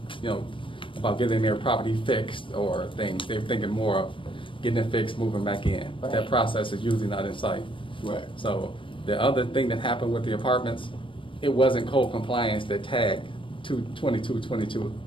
about getting their property fixed or things. They're thinking more of getting it fixed, moving back in. But that Right. process is usually not in sight. Right. So the other thing that happened with the apartments, it wasn't code compliance that tagged 2222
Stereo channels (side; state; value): right; late; 0.25 ms